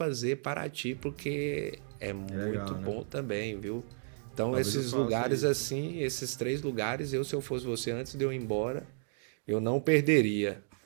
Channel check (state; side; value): silent; left; digital silence